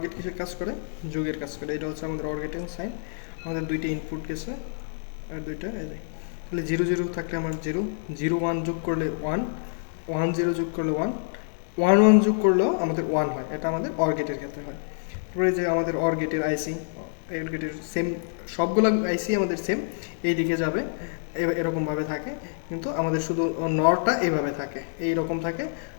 গেট কিসের কাজ করে? যোগের কাজ করে। এটা হচ্ছে আমাদের অর গেটের সাইন। আমাদের দুইটা ইনপুট গেছে আর দুইটা এই যে, তাহলে 0 0 থাকলে আমার 0, 0 1 যোগ করলে 1, 1 0 যোগ করলে 1, 1 1 যোগ করলেও আমাদের 1 হয়। এটা আমাদের অর গেটের ক্ষেত্রে হয়। তারপরে যে আমাদের অর গেটের আইসি, অর গেটের সেম সবগুলো আইসি আমাদের সেম এই দিকে যাবে, এরকমভাবে থাকে, কিন্তু আমাদের শুধু নরটা এইভাবে থাকে, এইরকম থাকে,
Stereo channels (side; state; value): right; silent; 60 dB below the other